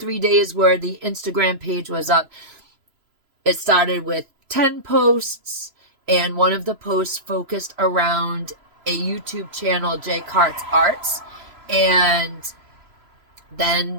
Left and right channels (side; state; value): left; late; 3.0 ms